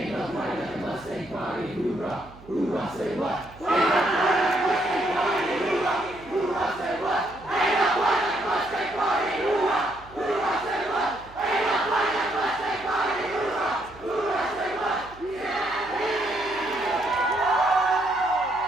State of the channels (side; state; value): right; noise; hum, 21 dB below the sound